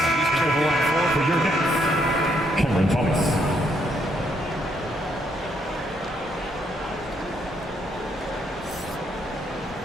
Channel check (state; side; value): normal; both; correlation 0.73